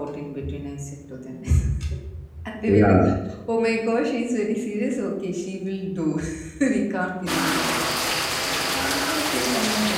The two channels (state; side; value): identical; both; correlation 1.00